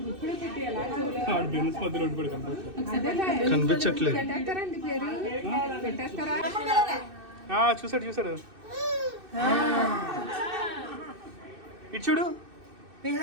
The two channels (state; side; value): late; left; 2.6 ms